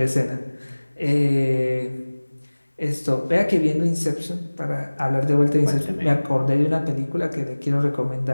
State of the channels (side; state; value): both; inverted; correlation -1.00